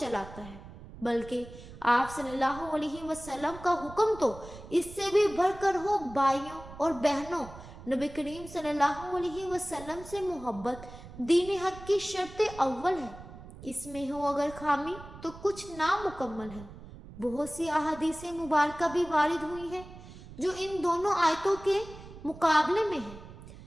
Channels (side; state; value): right; noise; rumble, 16 dB below the sound